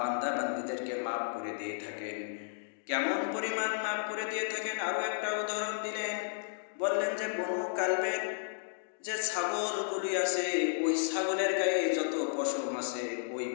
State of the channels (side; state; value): right; silent; digital silence